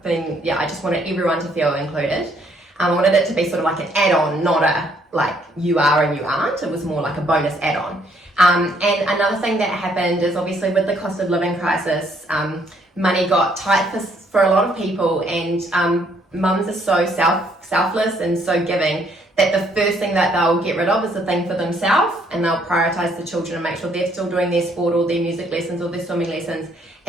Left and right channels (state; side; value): normal; both; correlation 0.67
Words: just wanted everyone to feel included. I wanted it to be sort of like an add-on, not a like you are and you aren't. It was more like a bonus add-on. And another thing that happened is, obviously with the cost of living crisis, money got tight for a lot of people, and mums are so selfless and so giving that the first thing that they'll get rid of is the thing for themselves, and they'll prioritize the children and make sure they're still doing their sport or their music lessons or their swimming lessons,